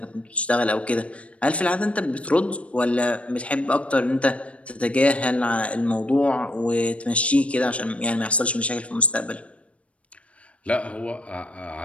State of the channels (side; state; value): right; late; 0.063 ms